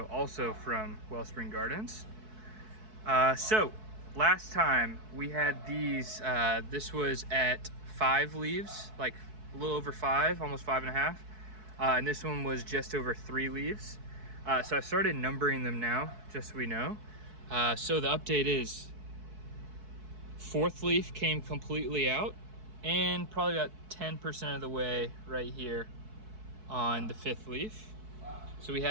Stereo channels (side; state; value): left; late; 4.6 ms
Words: also from Wellspring Gardens. So last time we had these, this was at 5 leaves, like a little over 5, almost 5.5. And this one was just over 3 leaves. So I've started numbering them now, just so we know. So the update is 4th leaf came completely out and probably about 10% of the way right here on the 5th leaf. So we